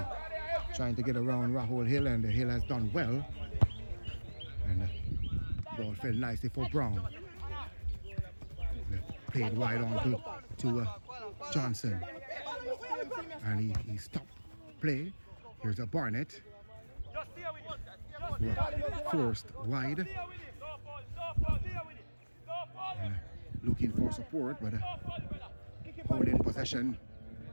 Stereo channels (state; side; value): inverted; both; correlation -1.00